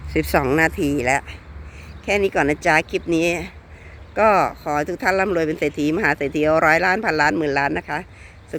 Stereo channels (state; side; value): identical; both; correlation 1.00